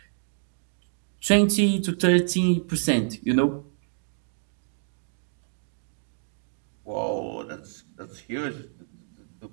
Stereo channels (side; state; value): left; silent; digital silence